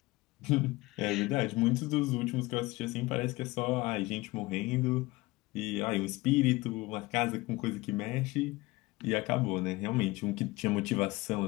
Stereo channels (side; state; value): right; quieter; 21.0 dB